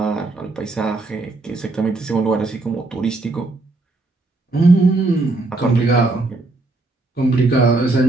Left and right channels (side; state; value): left; quieter; 3.1 dB